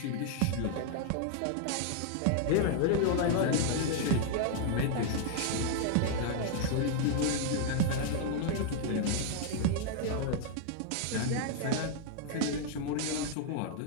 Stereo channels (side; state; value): both; different; correlation 0.00